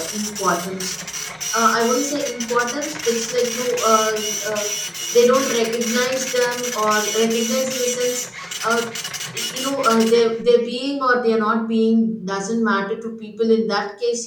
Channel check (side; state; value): both; identical; correlation 1.00